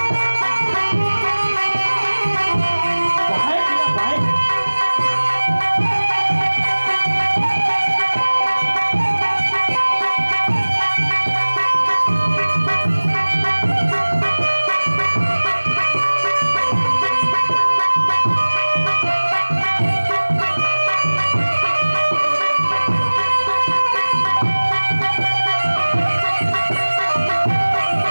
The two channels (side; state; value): both; inverted; correlation -1.00